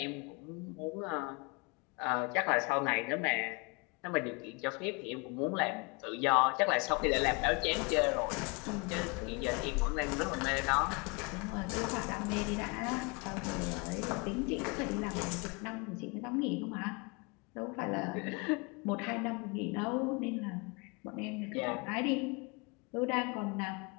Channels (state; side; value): quieter; right; 30.3 dB